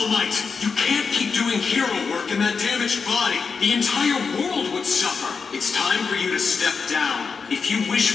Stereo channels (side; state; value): right; quieter; 5.3 dB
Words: Might. You can't keep doing hero work in that damaged body. The entire world would suffer. It's time for you to step down. If you